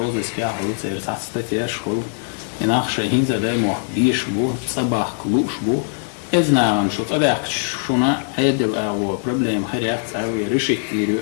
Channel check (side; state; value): right; silent; digital silence